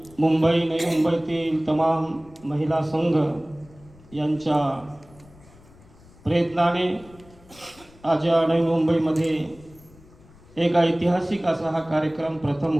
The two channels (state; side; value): noise; left; rumble, 24 dB below the sound